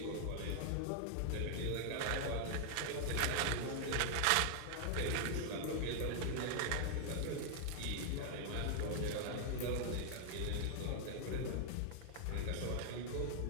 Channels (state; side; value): different; both; correlation 0.00